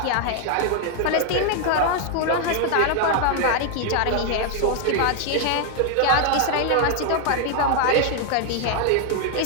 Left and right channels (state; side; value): different; both; correlation 0.00